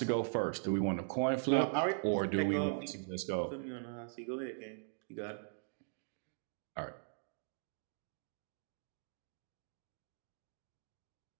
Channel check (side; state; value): left; silent; digital silence